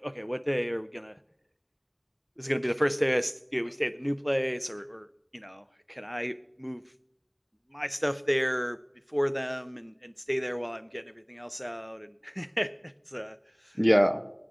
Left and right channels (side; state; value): both; identical; correlation 1.00